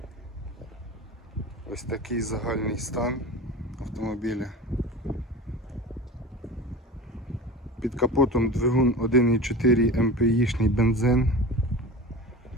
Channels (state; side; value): normal; both; correlation 0.33